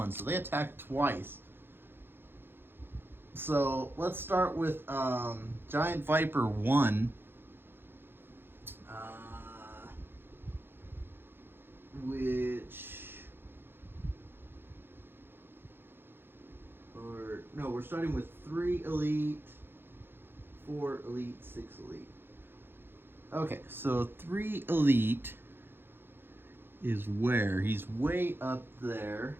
So they attack twice. So let's start with Giant Viper 1. We're starting with 3 elite, 4 elite, 6 elite. Okay, so 3 elite is where? He's way up there.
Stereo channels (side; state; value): left; late; 0.10 ms